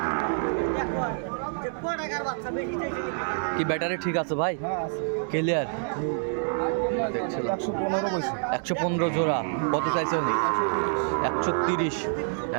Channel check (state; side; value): silent; left; 60 dB below the other